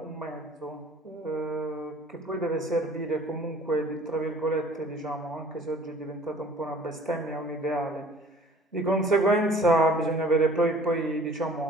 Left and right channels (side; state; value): both; normal; correlation 0.51